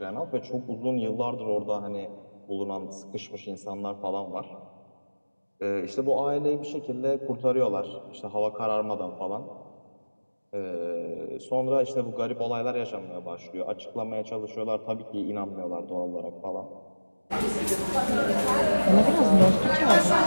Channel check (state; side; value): inverted; both; correlation -1.00